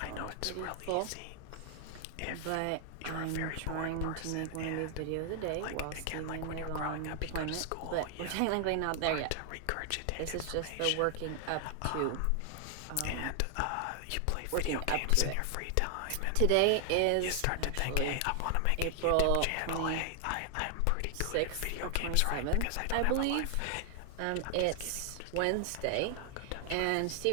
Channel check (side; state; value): both; different; correlation 0.00